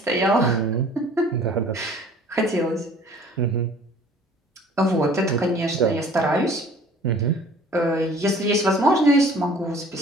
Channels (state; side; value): normal; both; correlation 0.51